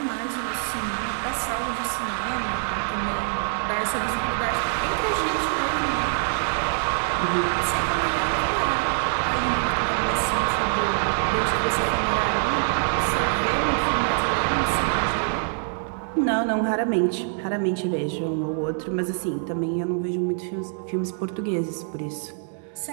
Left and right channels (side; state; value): left; silent; 61 dB below the other